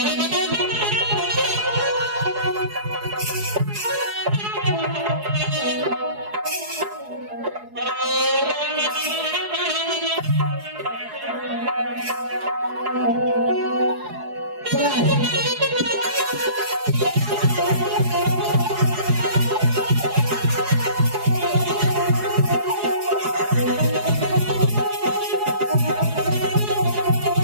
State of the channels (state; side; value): late; left; 4.8 ms